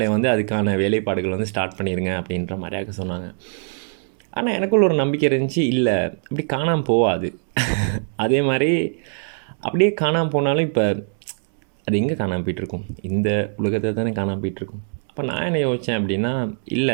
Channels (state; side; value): silent; left; digital silence